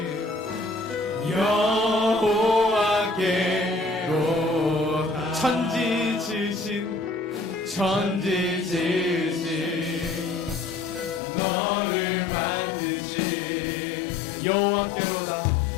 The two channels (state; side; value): drops out; right; at 11.2 s